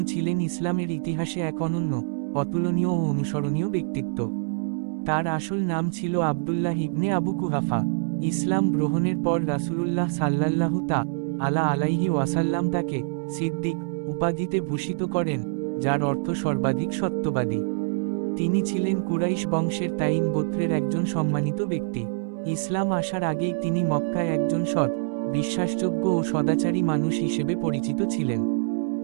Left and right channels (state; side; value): silent; left; digital silence